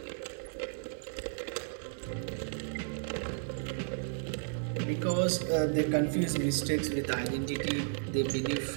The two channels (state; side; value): silent; left; 55 dB below the other